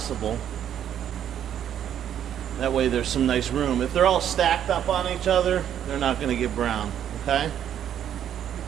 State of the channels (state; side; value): quieter; left; 9.9 dB